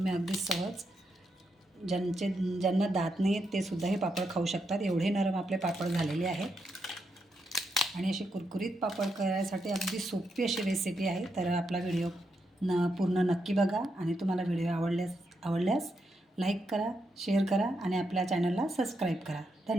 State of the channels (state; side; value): normal; both; correlation 0.82